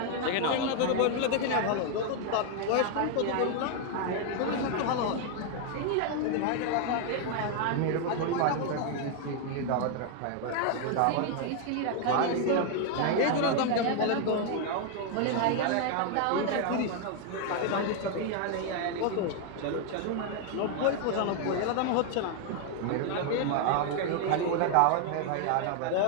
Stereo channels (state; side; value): different; both; correlation 0.00